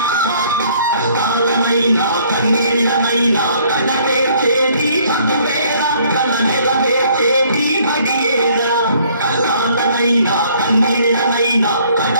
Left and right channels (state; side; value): inverted; both; correlation -0.61